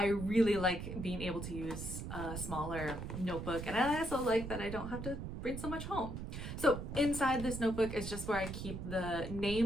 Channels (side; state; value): right; noise; rumble, 7 dB below the sound